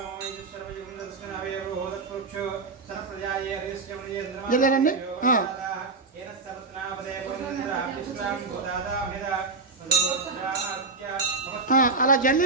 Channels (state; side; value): quieter; left; 3.9 dB